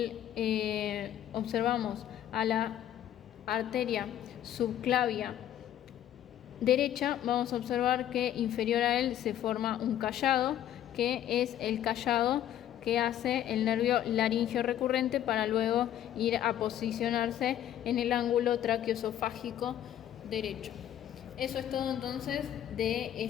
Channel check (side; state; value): right; quieter; 11.3 dB